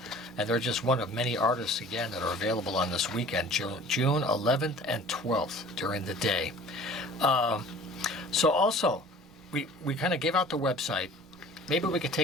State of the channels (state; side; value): noise; right; rumble, 27 dB below the sound